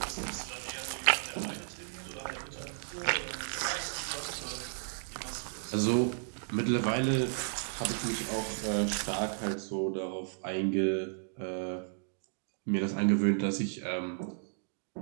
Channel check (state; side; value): silent; left; digital silence